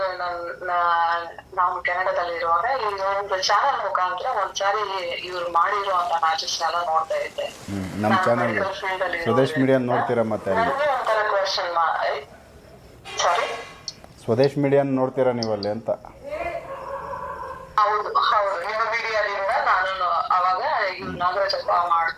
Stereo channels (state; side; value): identical; both; correlation 1.00